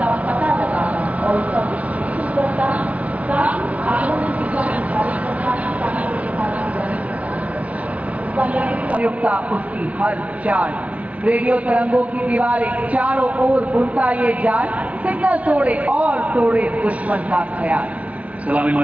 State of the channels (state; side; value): late; left; 0.067 ms